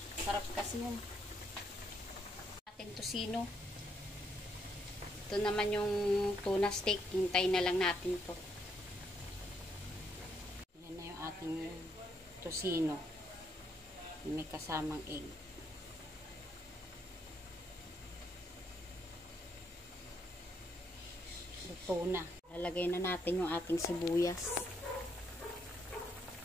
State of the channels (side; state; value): both; normal; correlation 0.74